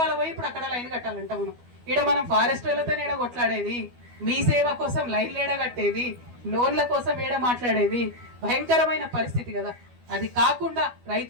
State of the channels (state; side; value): late; left; 12 ms